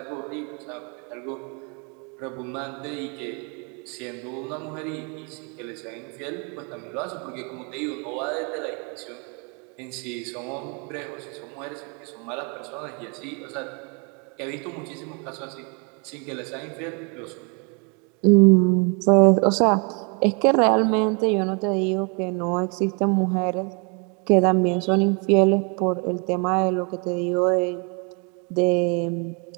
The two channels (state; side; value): quieter; left; 34.6 dB